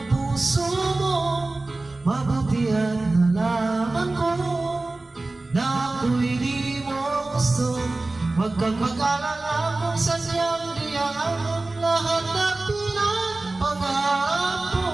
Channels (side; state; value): left; quieter; 3.1 dB